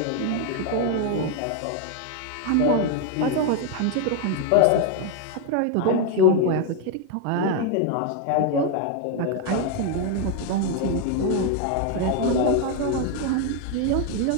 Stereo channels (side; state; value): both; different; correlation 0.01